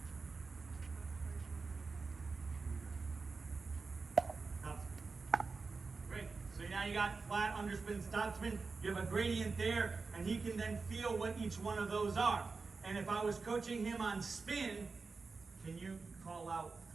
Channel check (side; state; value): left; quieter; 4.3 dB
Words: topspin. Great. So now you got flat, underspin, topspin. You have a gradient there, and he can then feel what each one of those are. And if I was coaching him on spin, can you call out